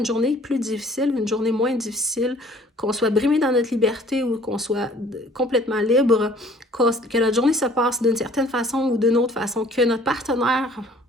journée plus difficile, une journée moins difficile, qu'on soit brimé dans notre liberté ou qu'on soit complètement libre, que notre journée se passe d'une certaine façon ou d'une autre façon, que notre partenaire,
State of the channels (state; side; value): normal; both; correlation 0.54